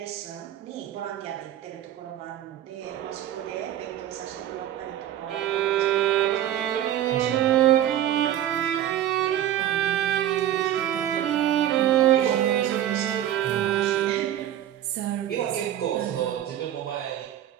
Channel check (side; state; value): left; quieter; 11.6 dB